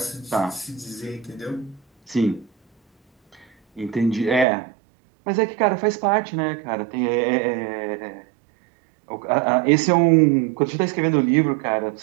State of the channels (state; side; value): drops out; left; at 4.5 s